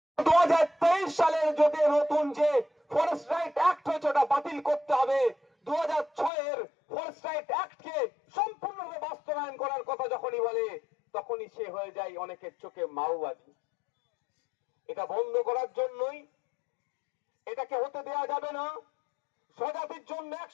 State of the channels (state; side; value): drops out; right; at 6.3 s